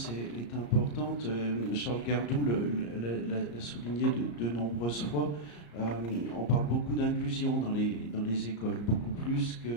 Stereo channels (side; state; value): right; late; 34 ms